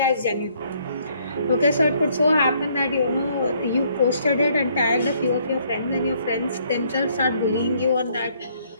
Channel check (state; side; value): inverted; both; correlation -0.66